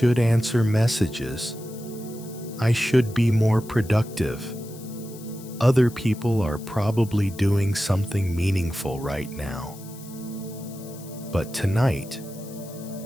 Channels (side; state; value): left; noise; hiss, 19 dB below the sound